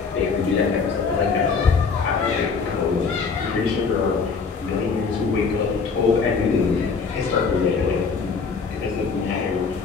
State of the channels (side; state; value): right; quieter; 5.2 dB